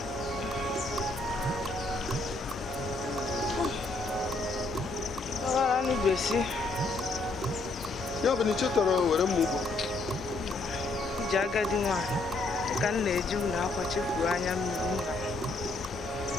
Agora não desce. Ya bani chetara were mugo. Jaga di nwa. Ka na-eju na akwa chefu anya mmiri nna.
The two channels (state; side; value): quieter; right; 3.1 dB